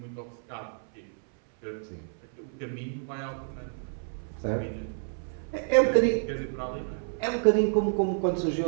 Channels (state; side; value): silent; left; 58 dB below the other